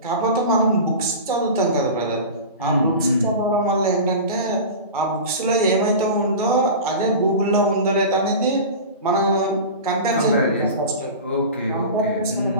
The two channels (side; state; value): both; inverted; correlation -0.31